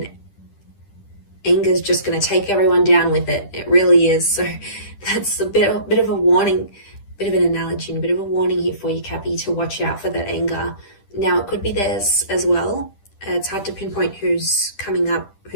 anger is just going to take everyone down with it. It really is. So that's a bit of a warning, bit of an analogy, and a bit of a warning here for you, Cappy, to watch out for that anger. Now, it could be theirs as well. It's hard to pinpoint who's coming up,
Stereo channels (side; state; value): right; late; 10 ms